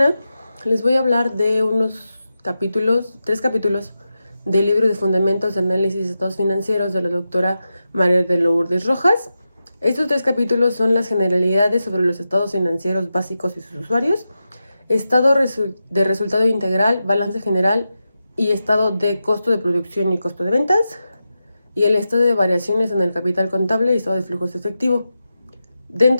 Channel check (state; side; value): inverted; both; correlation -0.90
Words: les voy a hablar de tres capítulos del libro de Fundamentos de Análisis de Estados Financieros de la doctora María de Lourdes Rojas. Estos tres capítulos son las generalidades sobre los estados financieros básicos y sus usuarios, estado de resultado integral, balance general y estado de costo de producción y costo de ventas, y el estado de variaciones en el capital contable y estado de flujos efectivo.